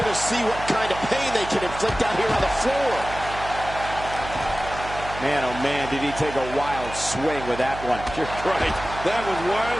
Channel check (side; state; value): right; noise; hum, 11 dB below the sound